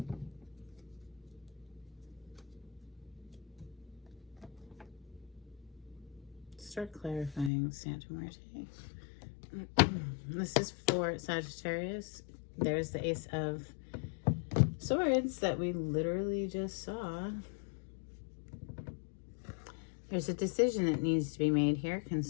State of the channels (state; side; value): drops out; right; at 7.5 s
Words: Start clarifying, Santa Muerte. This is for Sagittarius. There's the Ace of Swords that we literally just saw. There's a decision that needs to be made here